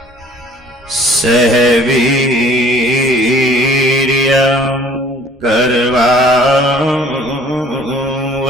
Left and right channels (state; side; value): normal; both; correlation 0.54